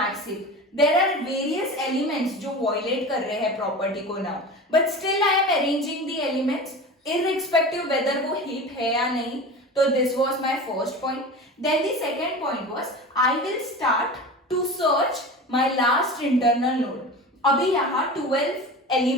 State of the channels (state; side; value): normal; both; correlation 0.32